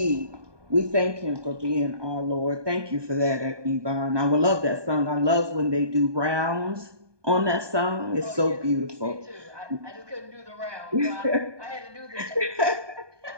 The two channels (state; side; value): late; left; 1.2 ms